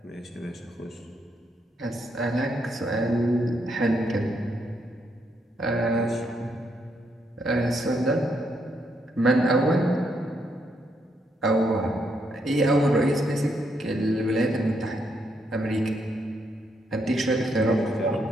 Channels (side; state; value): both; normal; correlation 0.77